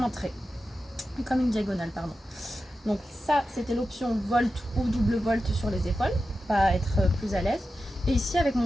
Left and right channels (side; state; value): both; normal; correlation 0.91